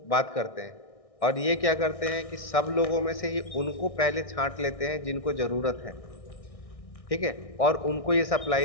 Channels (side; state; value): right; late; 1.6 ms